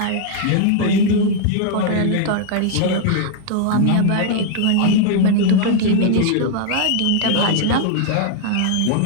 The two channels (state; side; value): different; both; correlation -0.01